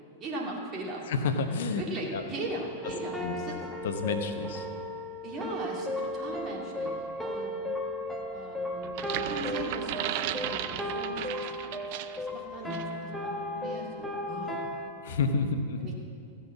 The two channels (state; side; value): normal; both; correlation 0.02